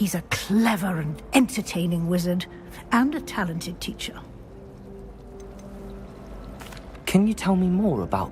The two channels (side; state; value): both; identical; correlation 1.00